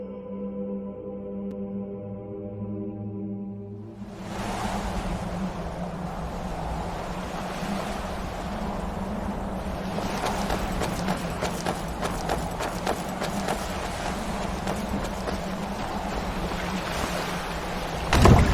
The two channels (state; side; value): identical; both; correlation 1.00